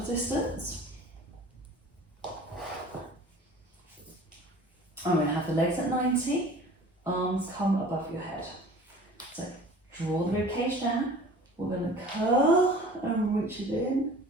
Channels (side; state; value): both; normal; correlation 0.44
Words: I'm going to have the legs at 90, arms come above your head. So draw the rib cage down. We're going to curl and reach it in